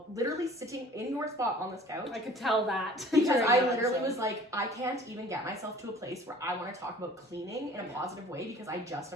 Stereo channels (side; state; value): both; normal; correlation 0.49